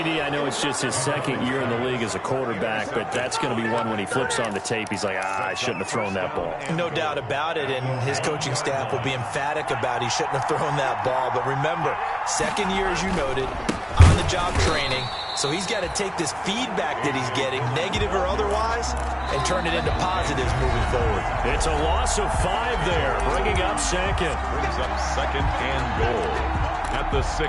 I know it's just his 2nd year in the league as a quarterback, but that's going to be one when he flips on the tape. He's like, I shouldn't have thrown that ball. No doubt about it, and his coaching staff will be emphatic about he shouldn't have thrown that ball. But remember, 2nd year, as you noted, on-the-job training. So he's got to take this feedback that he's getting, negative or otherwise, and turn it into positives moving forward. It's a loss of 5 there, bringing up 2nd. Brings up 2nd and goal at the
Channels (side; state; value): both; identical; correlation 1.00